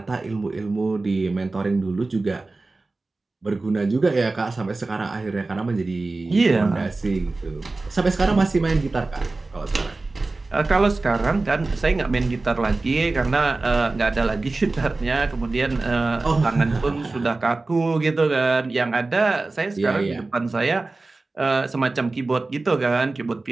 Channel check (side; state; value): left; quieter; 3.4 dB